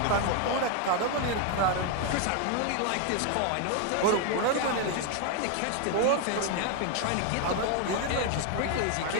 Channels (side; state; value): both; different; correlation 0.01